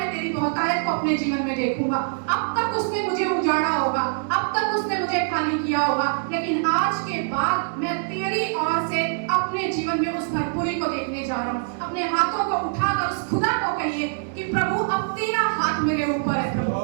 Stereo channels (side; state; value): left; silent; 63 dB below the other